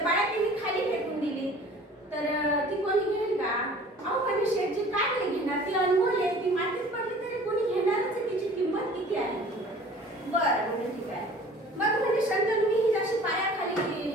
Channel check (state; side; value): normal; both; correlation 0.47